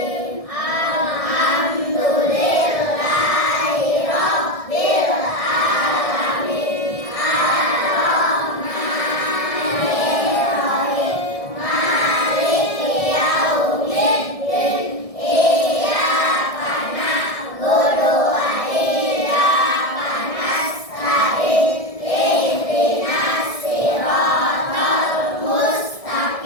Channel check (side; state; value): right; late; 1.6 ms